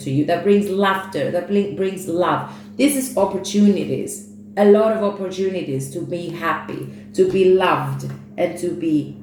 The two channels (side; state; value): both; identical; correlation 1.00